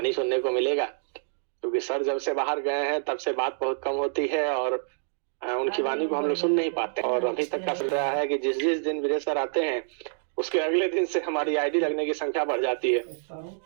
सुनने को मिलेगा। क्योंकि सर जब से बाहर गए हैं तब से बात बहुत कम होती है और उनकी वाणी को हम लोग सुन नहीं पाते। और अभी तक का चल रहा है कि जिस जिस दिन वीरेश सर आते हैं उसके अगले दिन से हमारी आईडी लगने की संख्या बढ़ जाती है।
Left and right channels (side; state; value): left; silent; digital silence